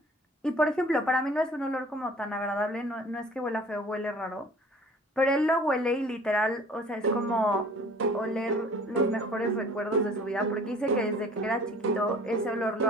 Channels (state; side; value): normal; both; correlation 0.49